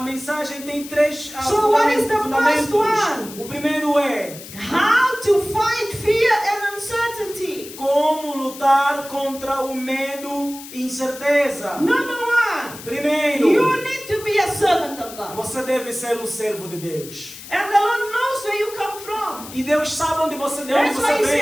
mensagem tem três So what is the fundamentos. first one? O primeiro é How to fight fear and uncertainty. como lutar contra o medo e incerteza. Number one, Primeiro, you need to be a servant of God. você deve ser um servo de Deus. And the Lord knows where you come from. E Deus sabe de onde That's why você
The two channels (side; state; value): left; noise; hiss, 15 dB below the sound